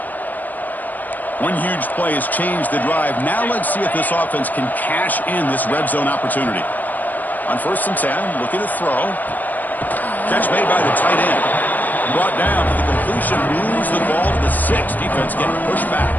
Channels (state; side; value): late; right; 0.085 ms